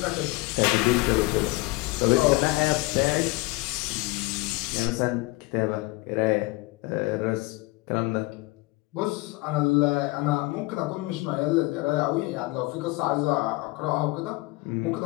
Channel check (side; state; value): right; quieter; 22.3 dB